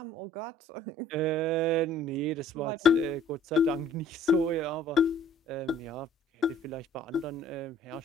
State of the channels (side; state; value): both; normal; correlation 0.54